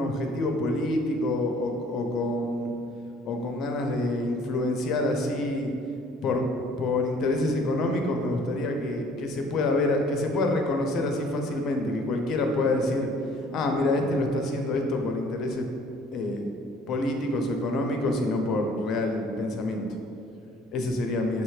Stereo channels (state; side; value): normal; both; correlation 0.56